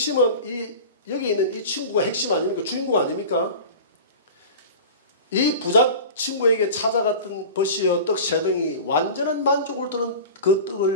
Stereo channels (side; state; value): both; inverted; correlation -0.35